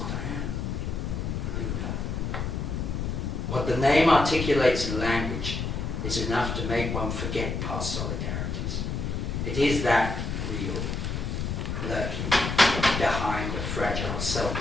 I am. Luder. What the name articulates in language is enough to make one forget past solidarities. It is that real, lurking behind a fragile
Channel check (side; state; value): left; noise; rumble, 2 dB below the sound